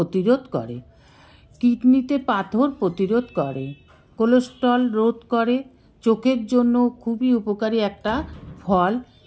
করে, কিডনিতে পাথর প্রতিরোধ করে, কোলেস্টেরল রোধ করে, চোখের জন্য খুবই উপকারী একটা ফল,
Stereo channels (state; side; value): identical; both; correlation 1.00